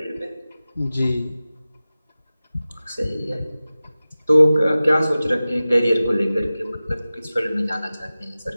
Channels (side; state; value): both; inverted; correlation -0.96